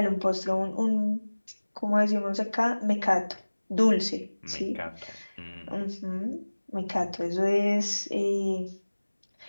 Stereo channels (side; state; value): both; inverted; correlation -1.00